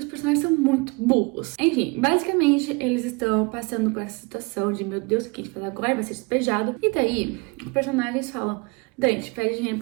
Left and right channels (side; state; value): left; quieter; 28.4 dB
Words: personagens são muito burros. Enfim, basicamente, eles estão passando por essa situação de: meu Deus, o que a gente faz agora? Vai ser despejado. E daí, os personagens falam: Dante, pede dinheiro